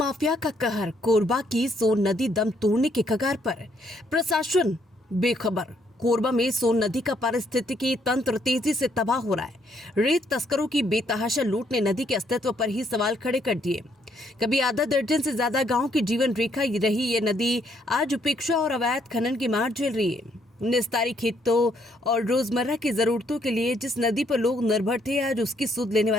का कहर, कोरबा की सोन नदी दम तोड़ने के कगार पर, प्रशासन बेखबर। कोरबा में सोन नदी का पारिस्थितिकी तंत्र तेजी से तबाह हो रहा है। रेत तस्करों की बेतहाशा लूट ने नदी के अस्तित्व पर ही सवाल खड़े कर दिए। कभी आधा दर्जन से ज्यादा गांव की जीवन रेखा रही ये नदी आज उपेक्षा और अवैध खनन की मार झेल रही है। निस्तारी खेतों और रोजमर्रा की जरूरतों के लिए जिस नदी पर लोग निर्भर थे, आज उसकी सुध लेने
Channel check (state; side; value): normal; both; correlation 0.70